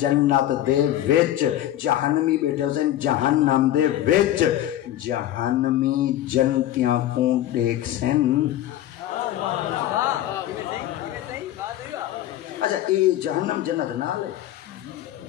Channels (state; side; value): quieter; right; 13.0 dB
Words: دے وچ جہنمی بیٹھے ہو سن جہنم دے وچ جہنمی جنتیاں کو دیکھ سن اچھا یہ جہنم جنت نہ لے